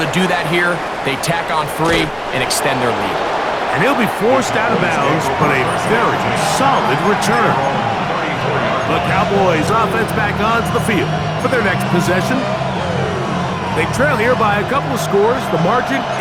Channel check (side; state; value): both; identical; correlation 1.00